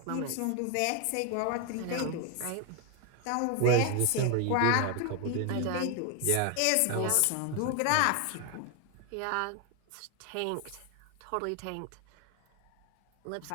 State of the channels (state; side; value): different; both; correlation 0.01